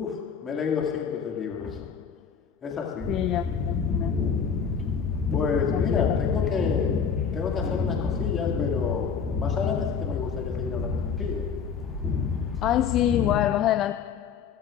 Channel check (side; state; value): right; quieter; 6.6 dB